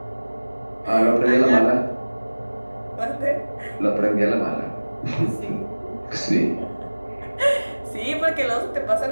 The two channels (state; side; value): inverted; both; correlation -1.00